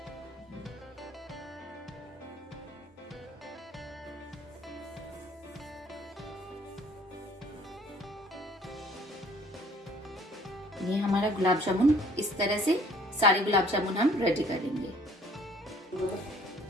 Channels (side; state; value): both; normal; correlation 0.56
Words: ये हमारा गुलाब जामुन इस तरह से सारे गुलाब जामुन हम रेडी करेंगे।